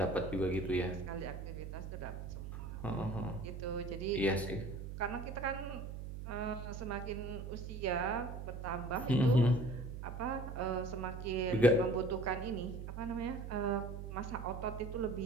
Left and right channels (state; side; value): noise; right; hum, 7 dB below the sound